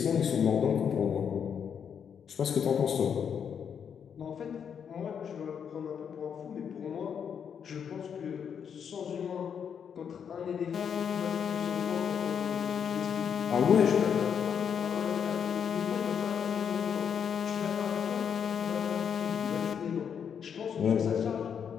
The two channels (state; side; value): quieter; right; 7.6 dB